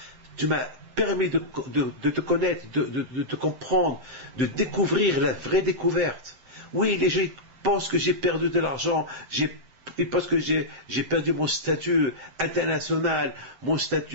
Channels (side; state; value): left; late; 7.6 ms